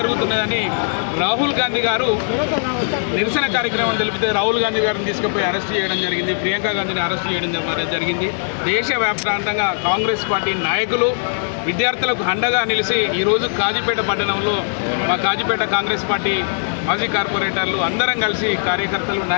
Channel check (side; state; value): right; silent; 63 dB below the other